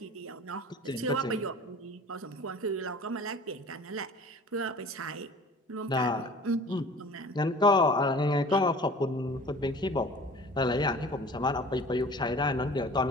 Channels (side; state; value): both; normal; correlation 0.44